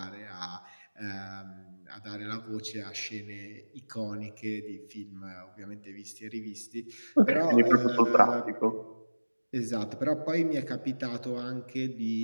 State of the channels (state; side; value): inverted; both; correlation -1.00